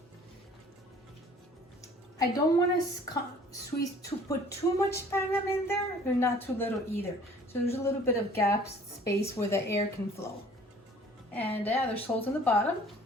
I don't want to put too much sphagnum in there, or not too little either. So there's a little bit of gap space where the air can flow. And yeah, there's holes in the bottom.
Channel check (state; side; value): normal; both; correlation 0.52